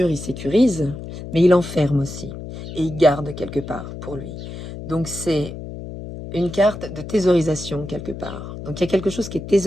il sécurise, mais il enferme aussi, et il garde quelque part pour lui. Donc c'est une carte de thésaurisation quelque part. Donc il y a quelque chose qui est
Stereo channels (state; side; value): noise; left; hum, 10 dB below the sound